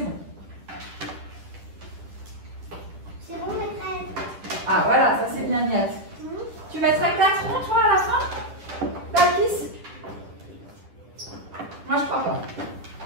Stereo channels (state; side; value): late; left; 10 ms